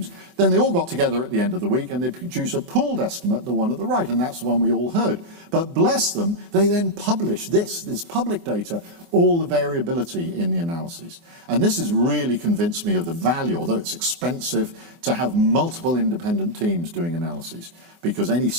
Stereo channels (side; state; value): left; late; 24 ms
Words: Then they all got together at the end of the week and they produced a pooled estimate, the one at the right, and that's the one we all heard. But bless them, they then published this public data, all the variability in the analyses. And this has really convinced me of the value, although it's expensive, to have multiple independent teams doing analyses, because any